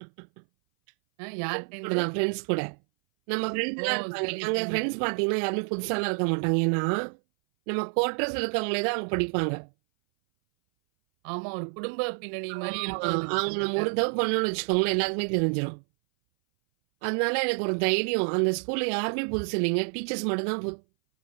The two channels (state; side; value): silent; left; 58 dB below the other